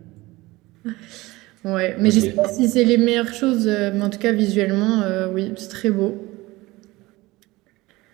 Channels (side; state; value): left; quieter; 20.4 dB